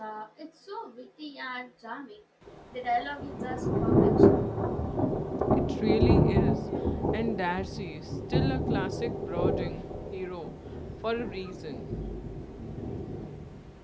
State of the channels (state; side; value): identical; both; correlation 1.00